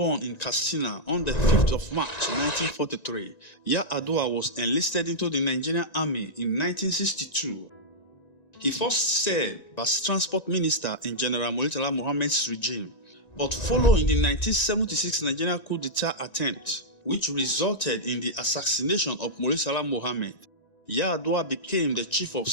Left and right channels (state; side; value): late; right; 1.9 ms